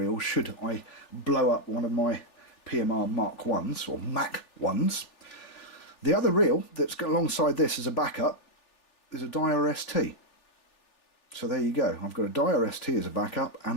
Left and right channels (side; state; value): right; late; 3.4 ms